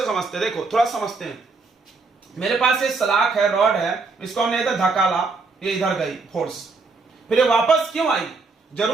समझते, देखो थोड़ा समझते हैं। मेरे पास ये सलाख है, रॉड है, इसको हमने इधर धकाला, ये इधर गई फोर्स, फिर ये वापस क्यों आई,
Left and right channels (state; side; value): quieter; left; 4.1 dB